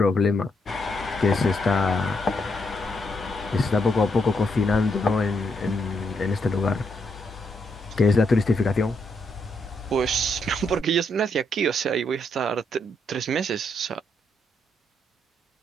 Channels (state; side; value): normal; both; correlation 0.77